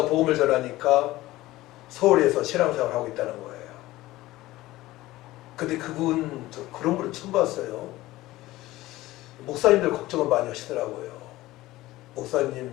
복음을 전하니까 서울에서 신앙생활을 하고 있다는 거예요. 근데 그분, 저 그런 분을 처음 봤어요. 목사님들 걱정을 많이 하시더라고요. 목사님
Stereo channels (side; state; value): right; quieter; 17.4 dB